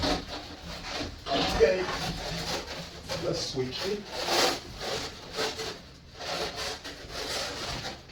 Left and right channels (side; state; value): both; identical; correlation 1.00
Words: Okay, let's switch it.